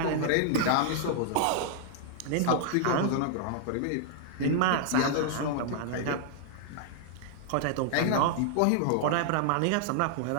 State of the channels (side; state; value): both; different; correlation -0.01